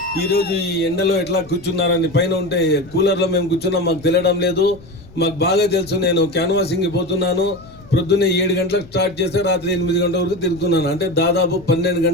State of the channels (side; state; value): left; noise; rumble, 22 dB below the sound